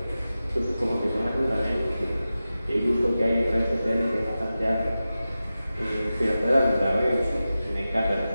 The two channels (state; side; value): inverted; both; correlation -0.94